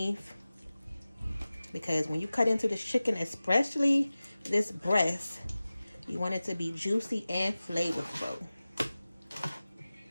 Because when you cut into this chicken, especially this breast, you want it to be juicy and flavorful.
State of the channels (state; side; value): inverted; both; correlation -0.96